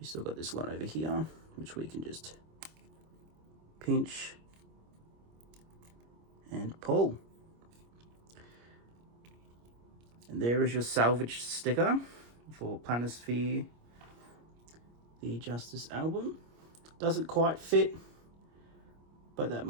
still got this one over here, which we can just pinch and pull. And there is your salvage sticker for Planisphere, the Justice album. Doesn't quite fit, but that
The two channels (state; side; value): late; left; 25 ms